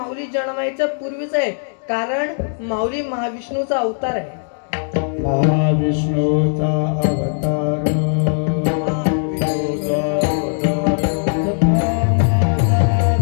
जन्मायच्या पूर्वीच आहे, कारण माऊली महाविष्णूचा अवतार आहे. महाविष्णूचा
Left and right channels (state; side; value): silent; right; digital silence